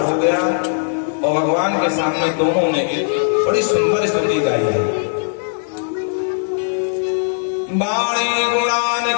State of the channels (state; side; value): silent; right; digital silence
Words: हो गया और भगवान के सामने दोनों ने एक बड़ी सुंदर स्तुति गाई है। बाणी गुणान